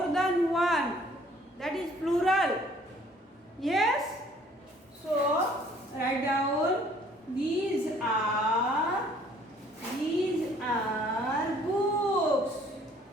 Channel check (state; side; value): normal; both; correlation 0.58